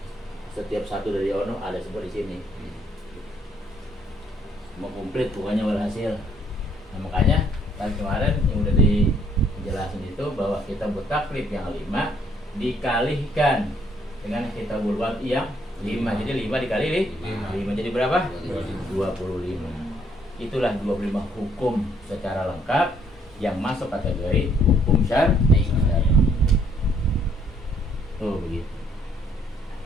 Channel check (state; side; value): normal; both; correlation 0.67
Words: setiap satu dari ono ada seperti di sini. Mau komplit pokoknya walhasil. Nah, makanya kan kemarin yang udah dijelasin itu bahwa kita taklif yang 5 dikalihkan dengan kita bulwan yang 5. Jadi 5 dikali 5 jadi berapa? 25. Itulah 25 hukum secara lengkap yang masuk kategori hukum syar'i. Tuh begitu.